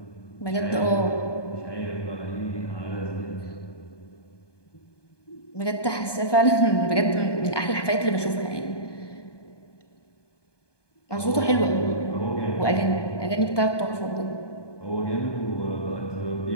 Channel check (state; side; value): late; right; 1.2 ms